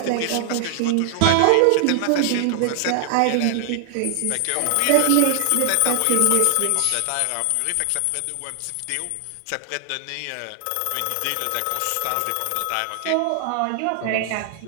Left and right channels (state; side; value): different; both; correlation 0.00